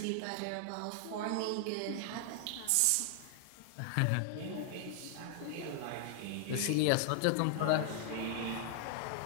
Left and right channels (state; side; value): different; both; correlation -0.01